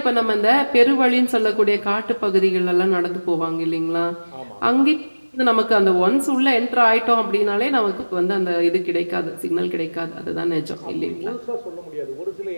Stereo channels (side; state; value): both; inverted; correlation -1.00